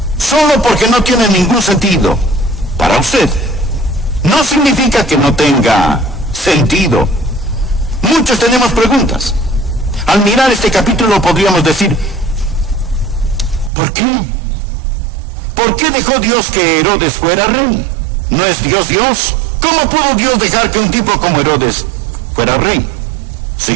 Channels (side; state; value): left; drops out; at 13.7 s